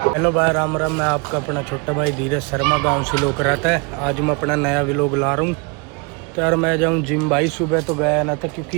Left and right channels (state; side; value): quieter; left; 31.5 dB